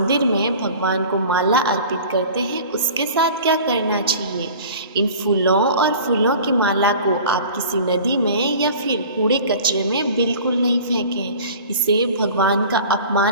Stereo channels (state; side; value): inverted; both; correlation -0.42